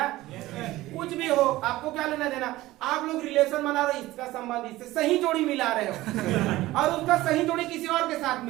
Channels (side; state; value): left; quieter; 17.4 dB